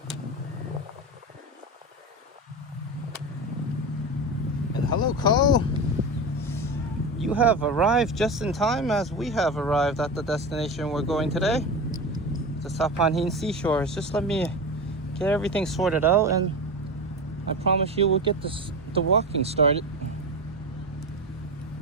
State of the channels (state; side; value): normal; both; correlation 0.23